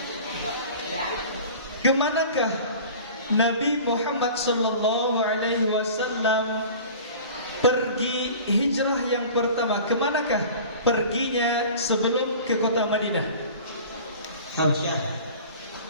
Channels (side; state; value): both; inverted; correlation -0.41